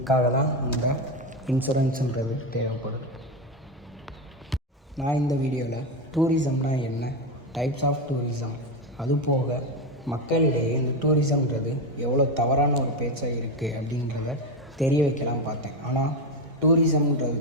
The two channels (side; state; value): both; normal; correlation 0.13